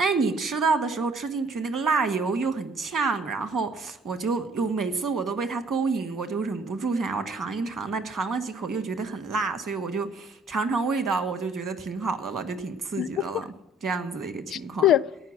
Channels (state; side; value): normal; both; correlation 0.56